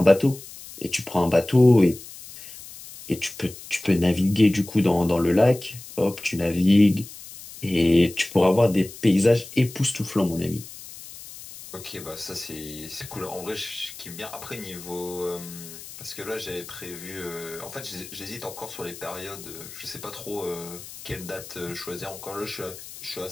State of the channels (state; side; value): noise; left; hiss, 15 dB below the sound